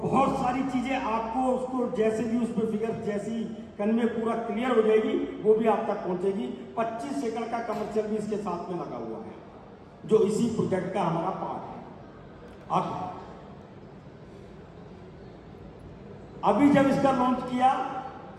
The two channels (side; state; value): both; identical; correlation 1.00